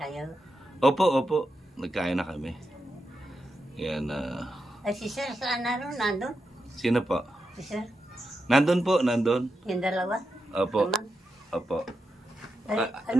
Opo. Nagkain na kami. Yan. Ay, si Sir, saan na rin? Nandun? Sino po? Si Sir? Nandun po, nandun. Yung dalawa? Opo. Naman? Opo. Ay,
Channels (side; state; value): both; normal; correlation 0.87